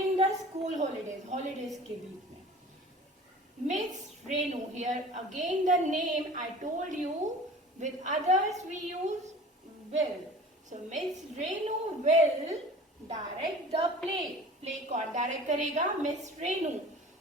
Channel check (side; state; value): both; normal; correlation 0.42